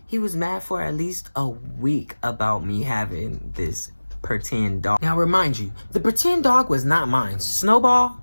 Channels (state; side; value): inverted; both; correlation -1.00